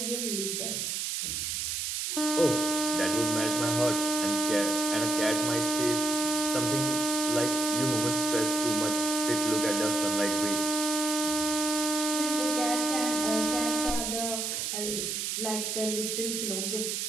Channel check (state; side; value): noise; right; hiss, 1 dB below the sound